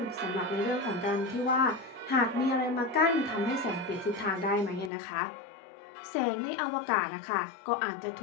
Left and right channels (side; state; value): right; drops out; at 4.9 s